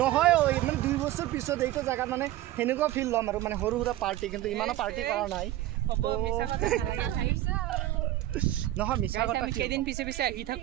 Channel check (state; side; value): quieter; left; 14.9 dB